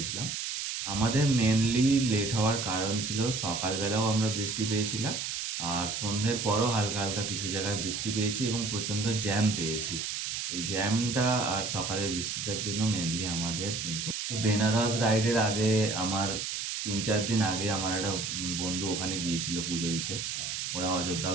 আমাদের মেনলি লেট হওয়ার কারণ ছিল সকালবেলাও আমরা বৃষ্টি পেয়েছিলাম, আর সন্ধ্যের পরও হালকা হালকা কিছু জায়গায় বৃষ্টি পেয়েছি এবং প্রচণ্ড জ্যাম পেয়েছি। ওই জ্যামটা আর সকালের বৃষ্টিটার জন্য মেনলি আমাদের কিন্তু। তো বেনারস রাইডের আগে আমার 3-4 দিন আগে আমার একটা বন্ধু ওখানে গিয়েছিল পুজো দিতে, ওরা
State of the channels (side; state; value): right; noise; hiss, 3 dB below the sound